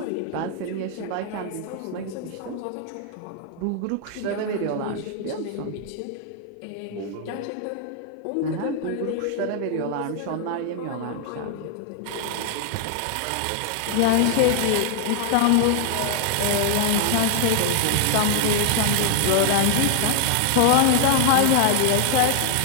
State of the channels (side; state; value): both; different; correlation 0.00